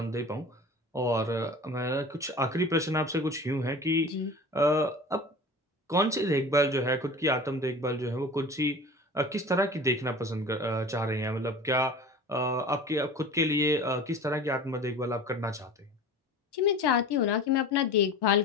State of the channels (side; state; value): both; normal; correlation 0.38